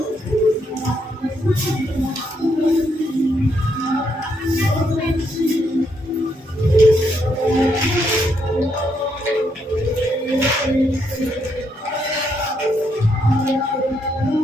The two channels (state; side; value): normal; both; correlation 0.76